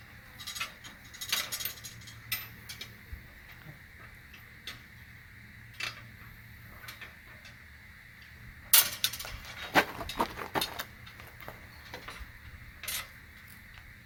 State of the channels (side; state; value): both; identical; correlation 1.00